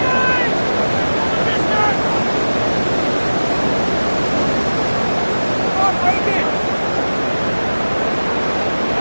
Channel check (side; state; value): both; inverted; correlation -1.00